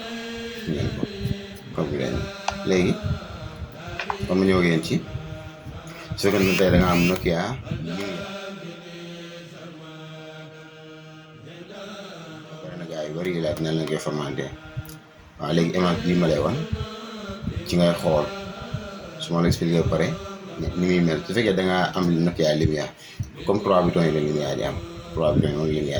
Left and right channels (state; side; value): identical; both; correlation 1.00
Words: ngeen ko code bi dañu léegi comme ñëw ngeen ci su fekkee ne tey da nga am Nokia bari na gars yu bari yi laaj nan la koy formaté. waaw léegi image bii ma lay wan ci ngay xool su ma la expliqué ba pare ni muy mel su fekkee da ngaa am Nokia lumière comme 3 boutons yi la lumière di am 3 boutons yi moom